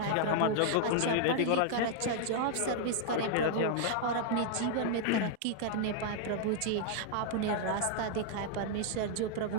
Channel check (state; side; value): different; both; correlation 0.00